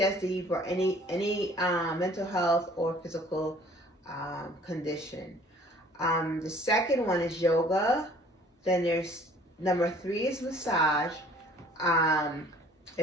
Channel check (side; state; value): both; normal; correlation 0.54